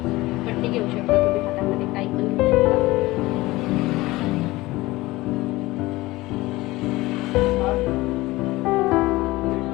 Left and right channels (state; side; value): quieter; right; 19.5 dB